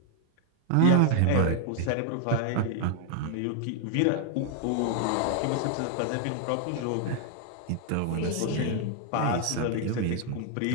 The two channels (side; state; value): both; different; correlation 0.00